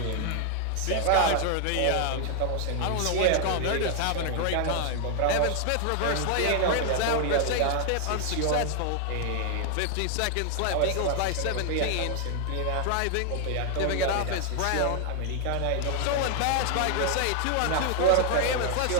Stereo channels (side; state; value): both; different; correlation 0.00